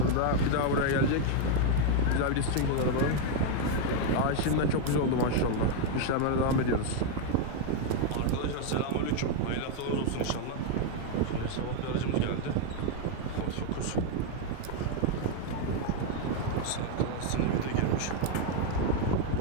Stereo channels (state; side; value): different; both; correlation 0.00